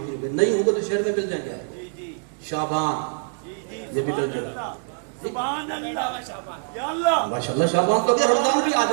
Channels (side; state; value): left; silent; digital silence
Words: گے، نہیں ہوں گے تو شہر میں مل جائیں گے۔ شعبان، یہ بھی مل جائے گا۔ سبحان اللہ، یا اللہ، ماشاءاللہ شعبان تو اگر رمضان بھی آ